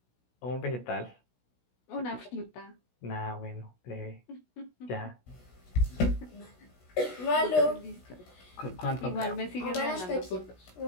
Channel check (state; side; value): late; right; 16 ms